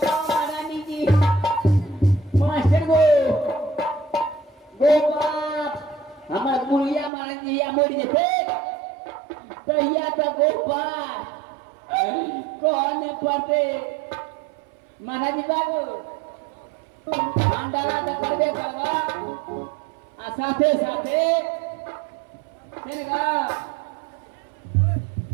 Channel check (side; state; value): left; drops out; at 7.1 s